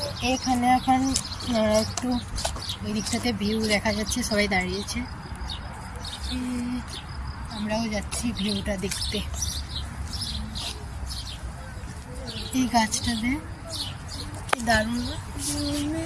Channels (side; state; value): both; identical; correlation 1.00